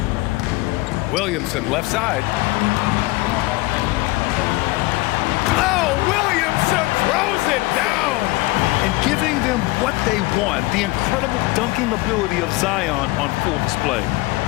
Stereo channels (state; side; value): quieter; right; 21.2 dB